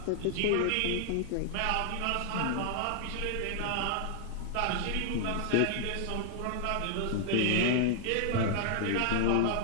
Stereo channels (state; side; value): different; both; correlation -0.01